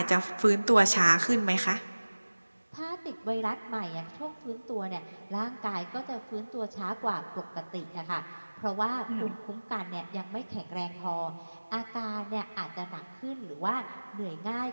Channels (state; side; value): inverted; both; correlation -1.00